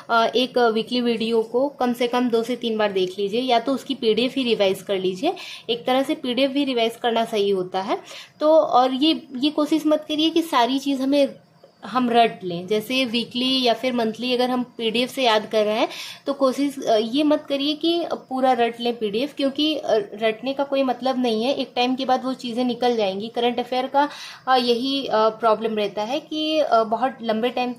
एक वीकली वीडियो को कम से कम 2 से 3 बार देख लीजिए, या तो उसकी पीडीएफ ही रिवाइज कर लीजिए। एक तरह से पीडीएफ भी रिवाइज करना सही होता है। तो और ये कोशिश मत करिए कि सारी चीज़ हम रट लें। जैसे वीकली या फिर मंथली अगर हम पीडीएफ से याद कर रहे हैं तो कोशिश ये मत करिए कि पूरा रट लें पीडीएफ, क्योंकि रटने का कोई मतलब नहीं है। एक टाइम के बाद वो चीज़ें निकल जाएंगी। करंट अफेयर का यही प्रॉब्लम रहता है कि बहुत लंबे टाइम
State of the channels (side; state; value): both; identical; correlation 1.00